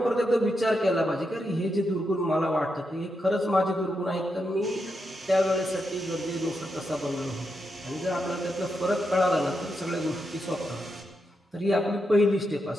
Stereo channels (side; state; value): both; normal; correlation 0.84